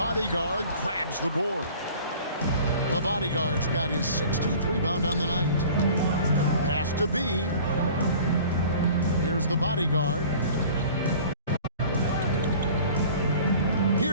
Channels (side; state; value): both; inverted; correlation -0.46